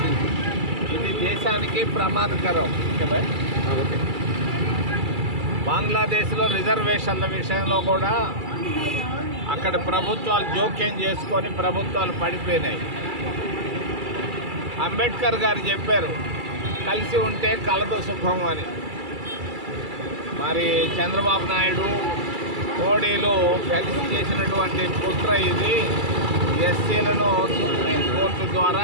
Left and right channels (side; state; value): left; late; 2.3 ms